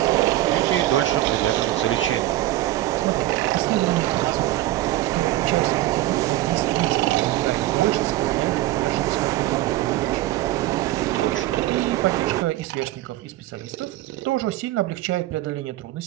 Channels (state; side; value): quieter; left; 15.5 dB